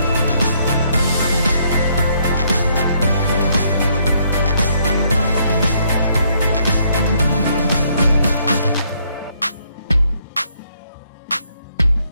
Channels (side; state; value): both; inverted; correlation -0.70